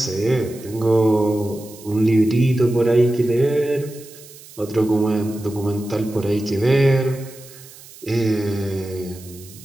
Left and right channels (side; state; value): right; noise; hiss, 20 dB below the sound